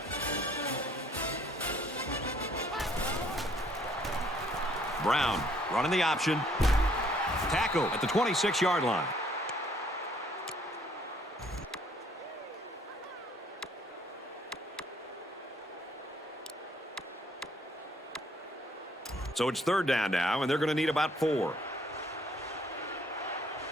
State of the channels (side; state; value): both; normal; correlation 0.63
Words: Brown running the option. Tackle at the 26-yard line. So it's third down now, and they're going to need about 4.